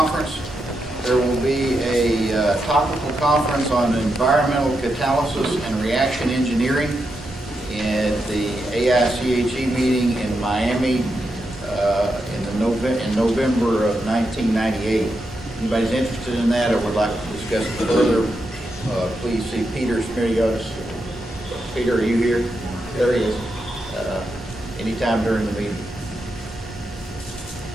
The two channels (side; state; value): both; normal; correlation 0.85